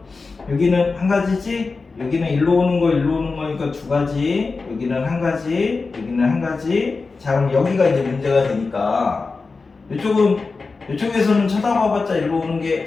여기는 한 가지지? 여기는 일로 오는 거니까 두 가지. 여기는 한 가지, 여기는 한 가지. 자, 그럼 여기가 이제 문제가 되니까 이쪽에서는 쳐다봐봤자 일로 오는 게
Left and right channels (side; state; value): right; quieter; 4.2 dB